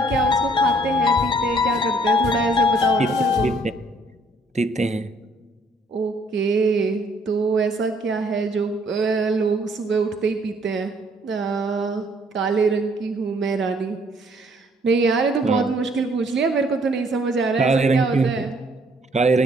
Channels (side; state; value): both; normal; correlation 0.64